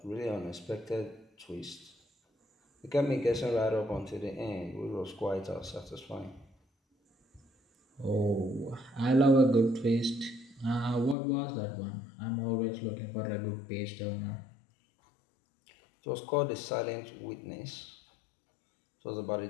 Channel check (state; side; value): drops out; right; at 11.2 s